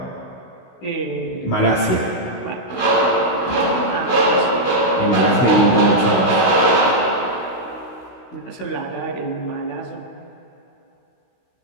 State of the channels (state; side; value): late; right; 16 ms